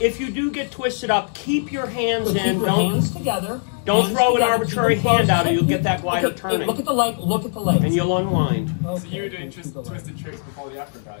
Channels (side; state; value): right; silent; digital silence